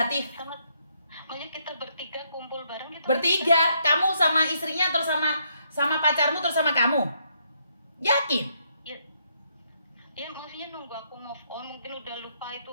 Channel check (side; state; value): both; inverted; correlation -0.74